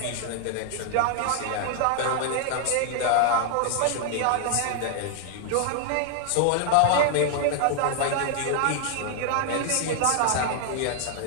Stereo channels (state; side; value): different; both; correlation 0.00